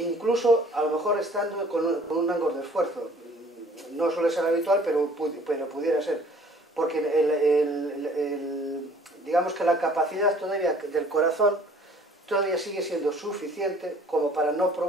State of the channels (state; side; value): normal; both; correlation 0.54